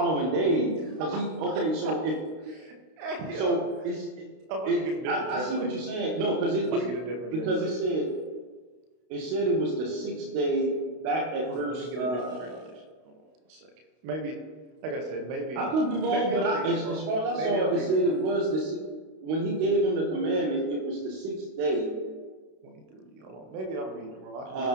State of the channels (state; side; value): late; left; 32 ms